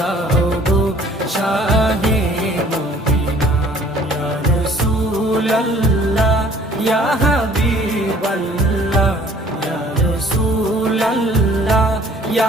গো শাহে মদিনা। ইয়া রাসূলাল্লাহ ইয়া হাবিবাল্লাহ, ইয়া রাসূলাল্লাহ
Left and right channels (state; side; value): normal; both; correlation 0.55